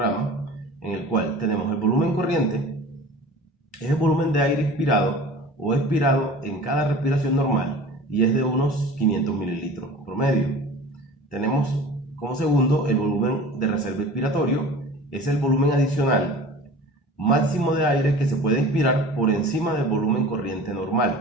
en el cual tenemos el volumen corriente, es el volumen de aire inspirado o expirado en cada respiración normal y es de unos 500 mililitros promedio. Tenemos como segundo el volumen de reserva expiratorio, es el volumen adicional máximo de aire que se puede inspirar por encima del volumen corriente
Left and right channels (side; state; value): both; normal; correlation 0.40